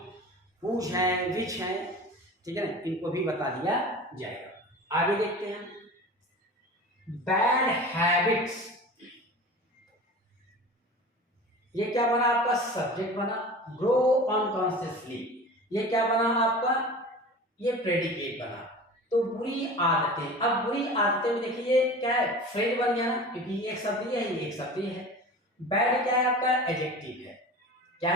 हुज हैं, विच हैं, ठीक है ना, इनको भी बता दिया जाएगा। आगे देखते हैं, बैड हैबिट्स। ये क्या बना आपका, सब्जेक्ट बना। ग्रो अनकॉन्शियसली, ये क्या बना आपका, ये प्रेडिकेट बना। तो बुरी आदतें, अब बुरी आदतें में देखिए क्या है, फ्रेज बन गया ना, क्योंकि ये एक शब्द है, ये एक शब्द है। बैड क्या है आपका, एडजेक्टिव है। क्या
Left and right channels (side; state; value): both; normal; correlation 0.36